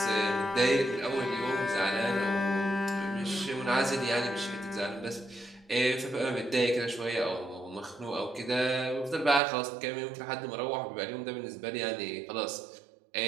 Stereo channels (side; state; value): left; drops out; at 9.4 s